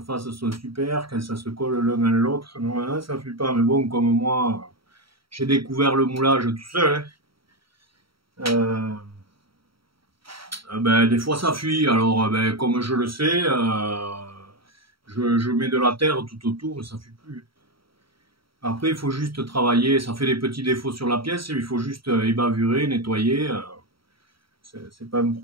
sont super, quand ça se colle l'un à l'autre, normalement ça fuit pas. Mais bon, comme moi, j'ai découvert le moulage tout seul. Hein. Ben, des fois ça fuit, alors ben, comme je le sais, je mets de la terre tout autour et ça fuit plus. Après il faut juste travailler, ça fait des petits défauts sur la pièce, il faut juste ébavurer, nettoyer, c'est pas un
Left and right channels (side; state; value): left; late; 0.75 ms